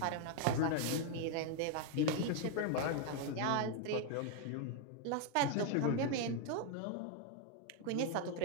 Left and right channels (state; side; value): different; both; correlation 0.00